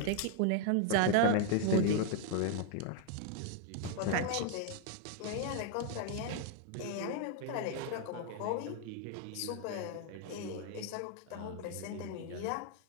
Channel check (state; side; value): different; both; correlation 0.00